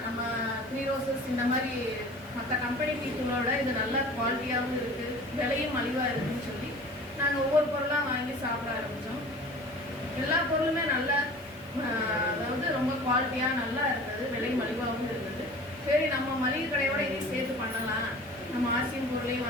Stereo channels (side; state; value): right; noise; hiss, 26 dB below the sound